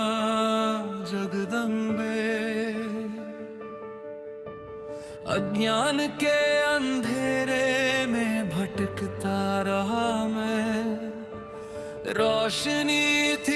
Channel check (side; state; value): both; identical; correlation 1.00